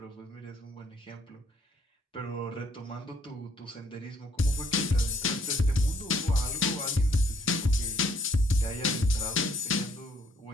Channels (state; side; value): normal; both; correlation 0.66